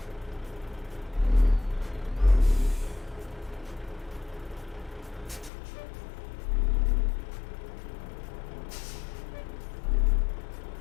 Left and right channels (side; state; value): right; drops out; at 5.5 s